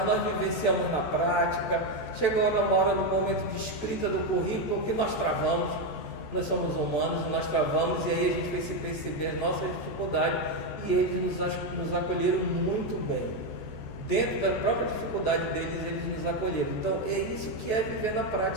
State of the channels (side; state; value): right; late; 14 ms